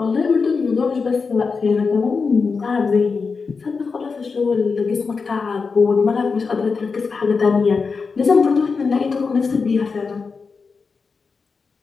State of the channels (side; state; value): right; quieter; 4.9 dB